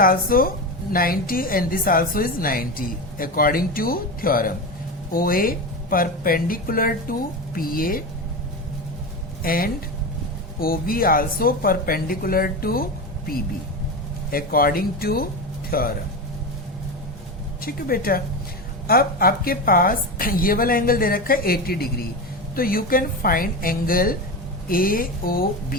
90 and this also is 90 according to theorem. OA perpendicular to PA and OB also perpendicular to PB according to theorem. ठीक है बेटा? अब आपके पास ये वाला एंगल दे रखा है 80 डिग्री, तो you can find angle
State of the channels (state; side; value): normal; both; correlation 0.21